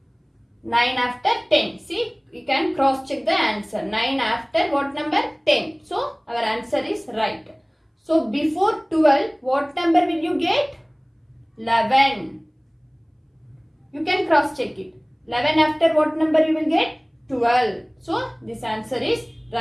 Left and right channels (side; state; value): both; identical; correlation 1.00